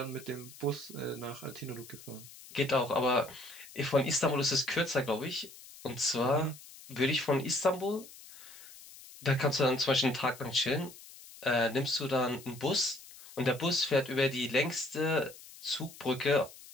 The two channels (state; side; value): noise; left; hiss, 18 dB below the sound